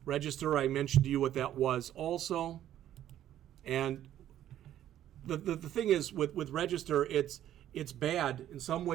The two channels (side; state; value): left; quieter; 11.9 dB